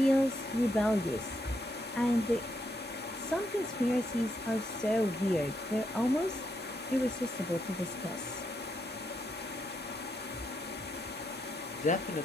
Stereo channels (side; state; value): both; normal; correlation 0.79